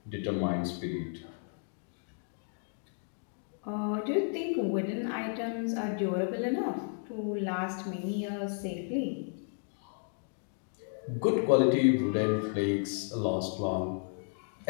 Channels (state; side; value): silent; right; 56 dB below the other